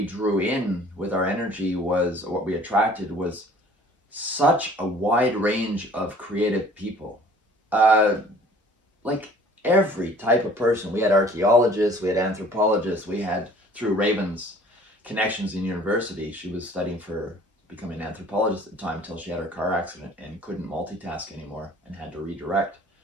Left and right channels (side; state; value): both; normal; correlation 0.51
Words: drew in with our energy, was, or what we attracted, was such a wide range of creative people. Like every type of person. We had archaeologists, we had anthropologists, we had through Raven's connections in university, she was studying for becoming an anthropologist at the time until she had her car accident and couldn't multitask anymore and had to redirect.